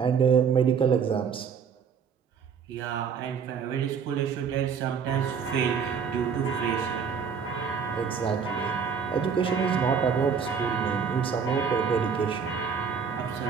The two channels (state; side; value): quieter; left; 6.5 dB